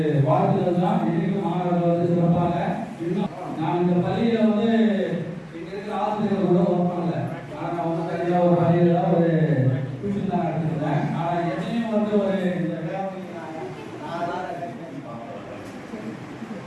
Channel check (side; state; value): both; identical; correlation 1.00